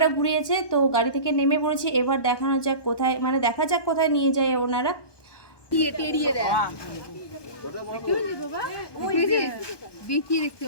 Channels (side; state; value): right; late; 1.2 ms